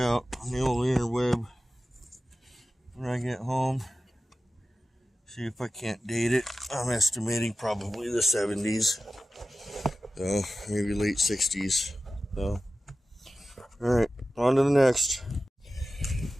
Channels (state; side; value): normal; both; correlation 0.94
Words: on the old interweb when I get home. See if I can't date it. I'm estimating probably the 70s. So maybe late 60s. So, alright, on to the next.